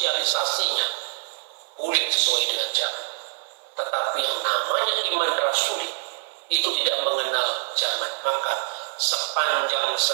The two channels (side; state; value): left; silent; digital silence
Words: boleh sesuai dengan zaman. Tetapi yang namanya iman rasuli itu tidak mengenal zaman. Maka sepanjang